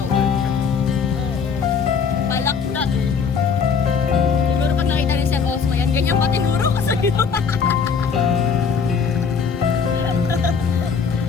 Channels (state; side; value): quieter; right; 6.0 dB